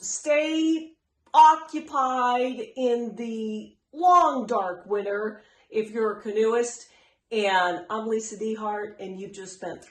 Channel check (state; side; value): identical; both; correlation 1.00